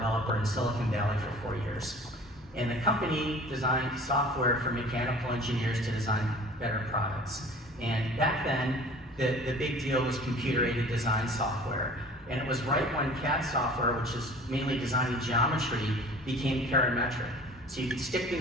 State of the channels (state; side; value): normal; both; correlation 0.45